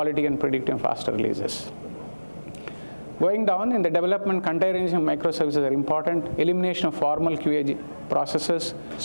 and predictive faster releases. Going down in the development, containerization microservices are important. Elimination of formal QA processes,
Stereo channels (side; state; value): both; inverted; correlation -1.00